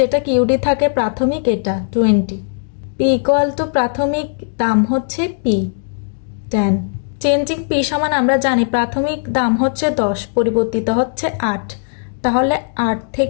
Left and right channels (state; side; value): silent; right; digital silence